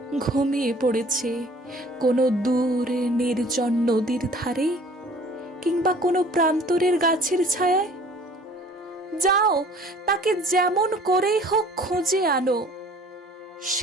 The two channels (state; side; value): normal; both; correlation 0.51